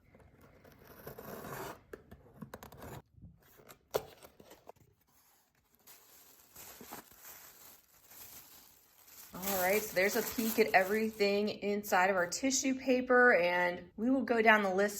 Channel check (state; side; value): identical; both; correlation 1.00